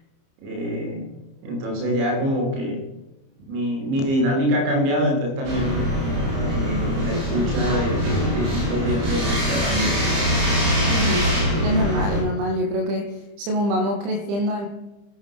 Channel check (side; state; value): left; late; 30 ms